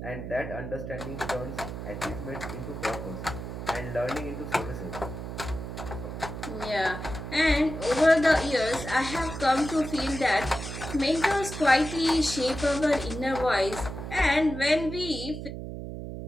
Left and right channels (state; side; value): noise; right; hum, 8 dB below the sound